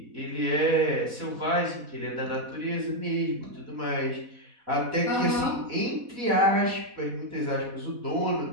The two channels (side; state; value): left; late; 4.1 ms